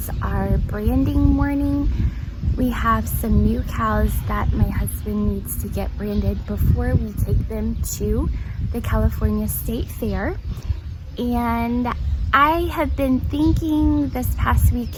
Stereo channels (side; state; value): both; identical; correlation 1.00